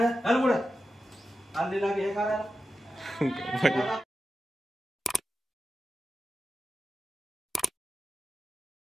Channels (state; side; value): normal; both; correlation 0.91